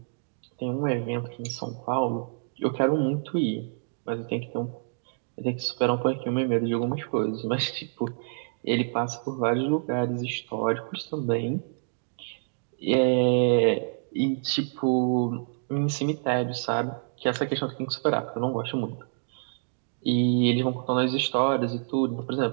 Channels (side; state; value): left; silent; digital silence